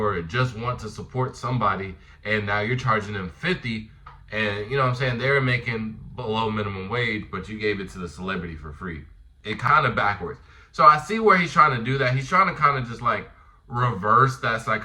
just want to support somebody, and now you're charging them $50. And you know what I'm saying? They're making below minimum wage, but you gave it to the celebrity for free. It kind of backwards. So I see where he's trying to do that. He's trying to kind of just like reverse that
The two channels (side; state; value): both; identical; correlation 1.00